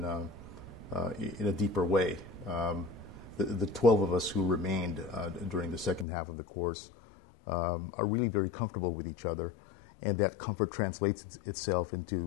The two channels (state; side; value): drops out; right; at 6.1 s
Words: in a deeper way. The 12 of us who remained during the second half of the course are really very comfortable with each other, and that comfort translates itself